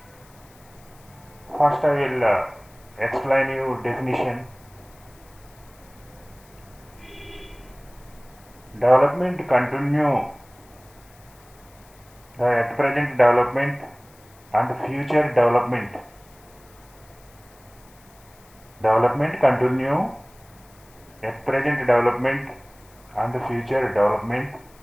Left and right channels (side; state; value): left; noise; hiss, 27 dB below the sound